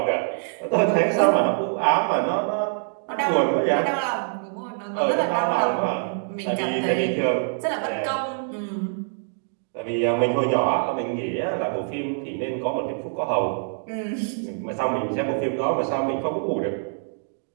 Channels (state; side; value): silent; left; digital silence